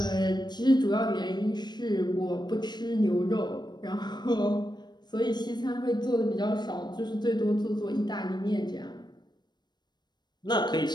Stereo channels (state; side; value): late; right; 0.21 ms